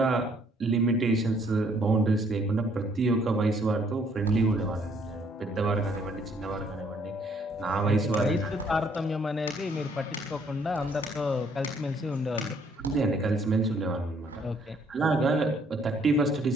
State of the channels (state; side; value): normal; both; correlation 0.65